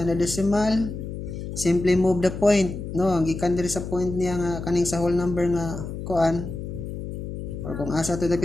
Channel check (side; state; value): left; noise; hum, 7 dB below the sound